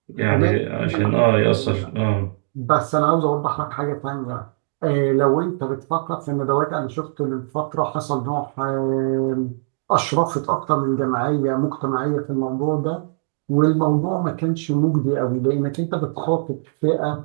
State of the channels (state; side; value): silent; left; digital silence